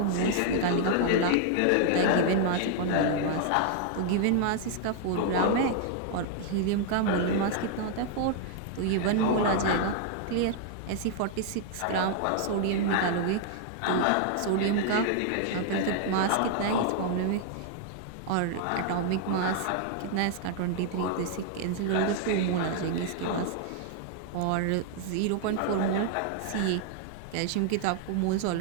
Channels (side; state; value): both; different; correlation 0.00